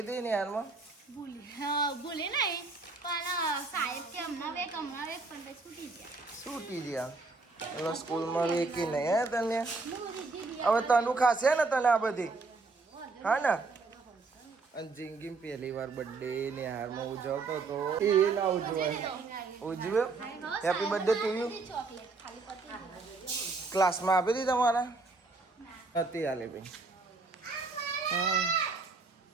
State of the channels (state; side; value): quieter; left; 3.8 dB